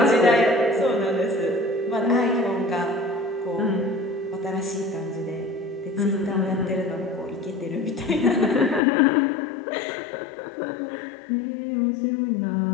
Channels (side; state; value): right; drops out; at 8.8 s